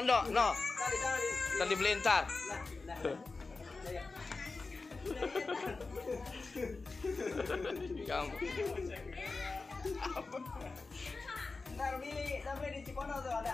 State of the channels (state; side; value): quieter; right; 3.9 dB